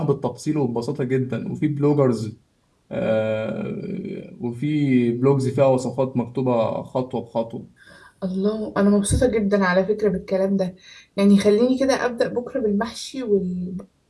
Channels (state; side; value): identical; both; correlation 1.00